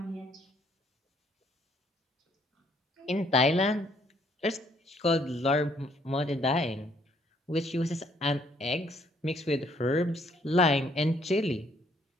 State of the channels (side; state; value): both; normal; correlation 0.66